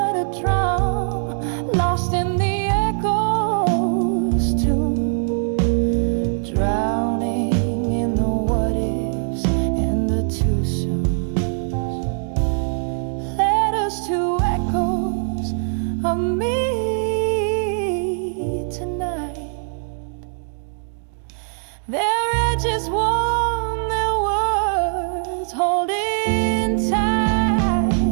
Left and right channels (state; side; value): silent; left; 60 dB below the other